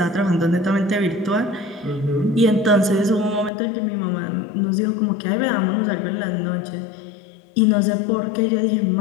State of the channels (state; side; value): drops out; right; at 3.5 s